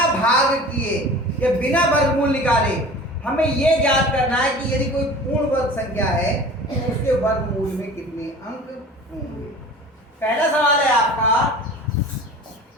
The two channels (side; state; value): both; normal; correlation 0.40